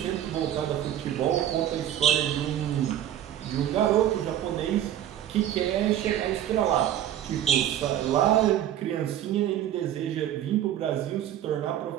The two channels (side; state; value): left; quieter; 11.3 dB